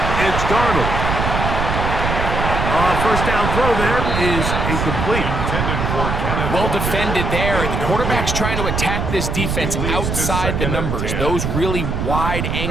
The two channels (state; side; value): noise; right; rumble, 1 dB below the sound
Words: it's Darnold. First down throw there is incomplete. Well defended there. The quarterback's trying to attack this defense outside the numbers. Those really wide